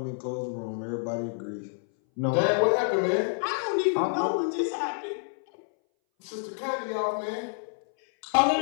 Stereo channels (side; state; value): right; silent; 59 dB below the other